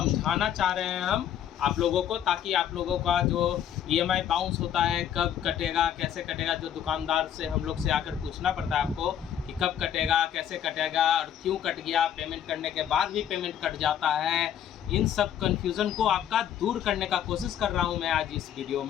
चाह रहे हैं हम आप लोगों को, ताकि आप लोगों का जो ईएमआई बाउंस होता है, कब कटेगा, कैसे कटेगा, जो दुकानदार से हम लोग से आकर पूछना पड़ता है आपको कि कब कटेगा, कैसे कटेगा और क्यों कट गया, पेमेंट करने के बाद भी पेमेंट कट जाता है, इन सब कन्फ्यूज़न को आपका दूर करने का कोशिश कर रहा हूं मैं आज इस वीडियो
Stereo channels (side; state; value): right; quieter; 9.9 dB